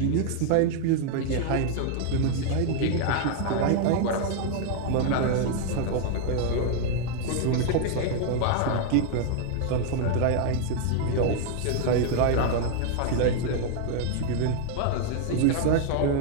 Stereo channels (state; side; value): different; both; correlation 0.00